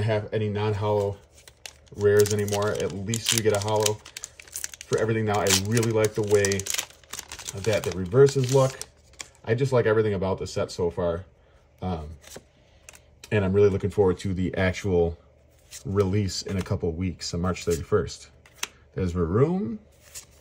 to have any non-hollow rares anymore. At least we get a hollow for everything now. I really like the way that the reverses look. I just like everything about the set so far. And I'm really looking forward to the actual release in a couple weeks on March 31st. There's Varoom,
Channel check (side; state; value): both; identical; correlation 1.00